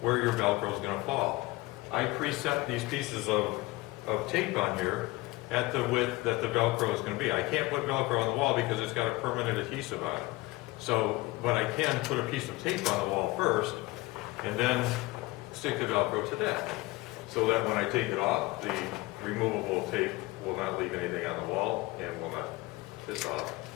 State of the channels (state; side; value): quieter; right; 21.6 dB